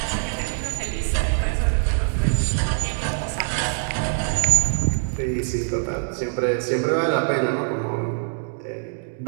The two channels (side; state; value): left; silent; digital silence